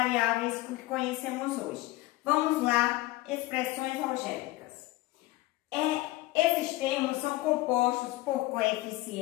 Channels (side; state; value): right; quieter; 18.9 dB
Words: que conhecemos hoje. Vamos lá, expressões algébricas. Esses termos são compostos por